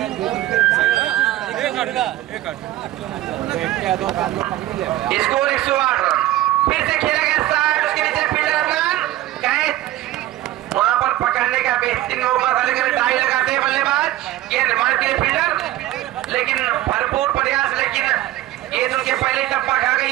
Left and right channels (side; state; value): left; quieter; 15.2 dB